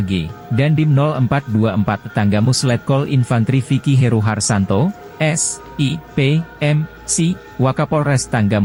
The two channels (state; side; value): identical; both; correlation 1.00